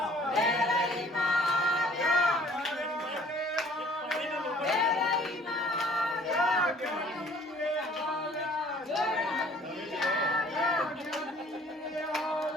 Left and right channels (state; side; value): normal; both; correlation 0.54